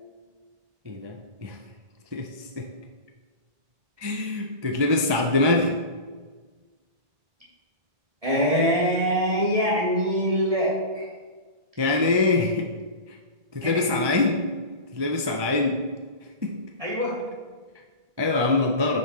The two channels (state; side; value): late; left; 1.2 ms